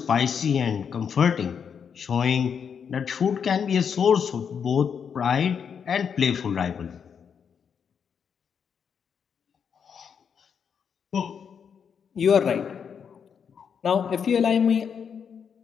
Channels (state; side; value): quieter; right; 7.1 dB